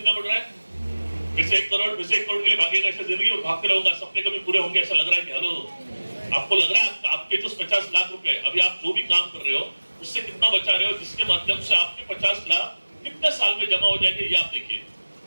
बढ़ रहा है? फिर से 1 करोड़, फिर से 1 करोड़ के लिए भागेगा ऐसा जिंदगी में भागते रहूंगा, सपने कभी पूरे होंगे ऐसा लग रहा है कि हेलो आपको लग रहा है आपके जो 50 लाख रुपए अभी आप जो भी काम कर रहे हो उससे कितना बचा रहे हो, जिसके माध्यम से आपके 50 लाख कितने साल में जमा हो जाएंगे ये आप देखिए,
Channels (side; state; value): both; inverted; correlation -1.00